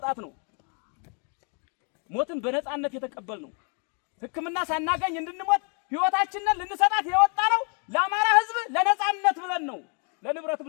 ነው። ሞትን በነፃነት የተቀበል ነው። ሕክምና ሳናገኝ እንድንሞት ህይወታችንን ልንሰጣት የወጣ ነው ለአማራ ህዝብ ለነፃነት ብለን ነው፣ ለንብረት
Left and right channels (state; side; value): quieter; right; 39.2 dB